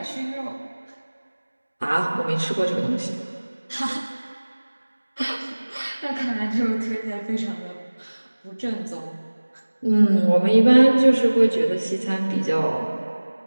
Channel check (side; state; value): both; inverted; correlation -1.00